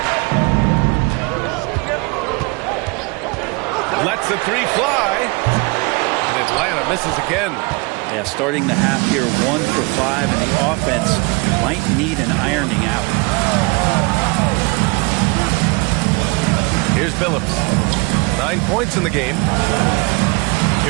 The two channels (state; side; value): quieter; left; 27.1 dB